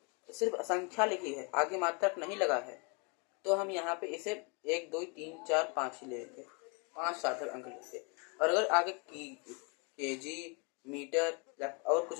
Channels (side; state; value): right; quieter; 32.5 dB